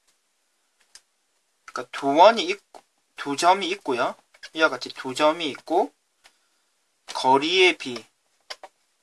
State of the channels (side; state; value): both; identical; correlation 1.00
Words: 그러니까 두 점이 있고요. 이와 같이 두 점이 있고 거리의 B가